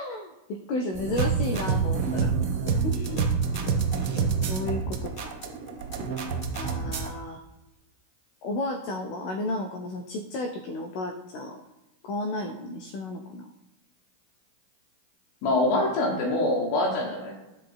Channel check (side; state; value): right; late; 16 ms